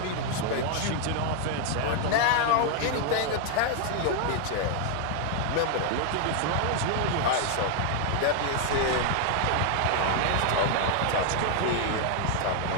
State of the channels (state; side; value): different; both; correlation 0.00